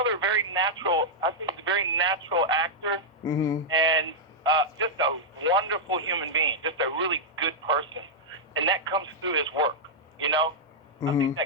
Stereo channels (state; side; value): normal; both; correlation -0.06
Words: very natural actor, and just a wonderful human being, just a really good person. And that comes through his work, I think